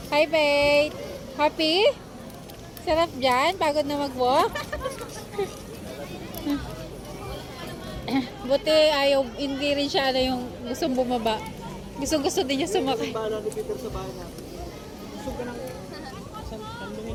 Hi, Paige! Happy? Sarap dyan? Pagod na mag-walk? Buti ayaw, hindi rin siya yung gustong bumaba. Gusto din niya sumakay. Bala ni Peter sa bahay natin. Gusto ka nang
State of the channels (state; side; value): identical; both; correlation 1.00